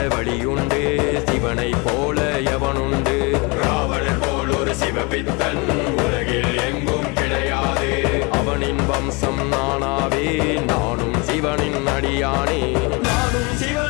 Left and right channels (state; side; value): quieter; right; 28.3 dB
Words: வழியுண்டு, சிவனை போல எவனுண்டு? ராவணன் போல் ஒரு சிவபித்தன் உலகில் எங்கும் கிடையாது. அவனின் வம்சம் நானாவே, நானும் சிவனின் அடியானே, நானும்